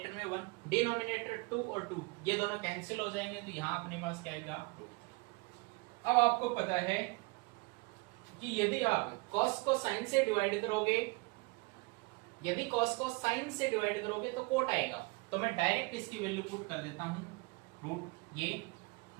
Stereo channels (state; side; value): quieter; left; 27.4 dB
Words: में 1, डिनोमिनेटर 2 और 2 ये दोनों कैंसिल हो जाएंगे, तो यहाँ अपने पास क्या आएगा √3। अब आपको पता है कि यदि आप cos को sin से डिवाइड करोगे, यदि cos को sin से डिवाइड करोगे तो कोट आएगा, तो मैं डायरेक्ट इसकी वैल्यू पुट कर देता हूं ये